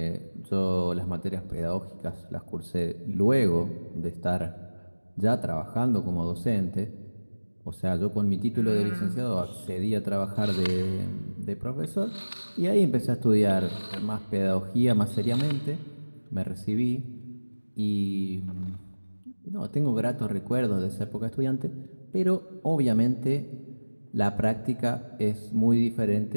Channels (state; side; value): inverted; both; correlation -1.00